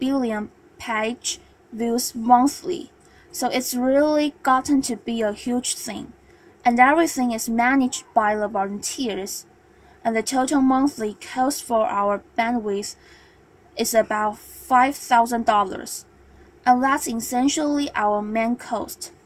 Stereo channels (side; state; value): both; identical; correlation 1.00